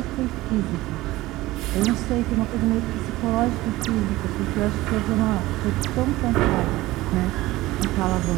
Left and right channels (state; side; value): quieter; left; 18.2 dB